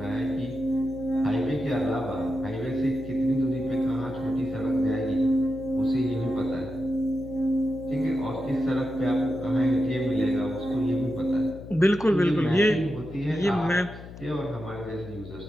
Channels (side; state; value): left; noise; hum, 14 dB below the sound